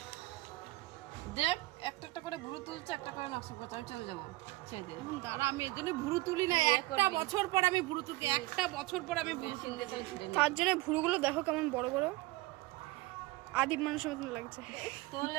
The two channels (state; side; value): quieter; left; 20.2 dB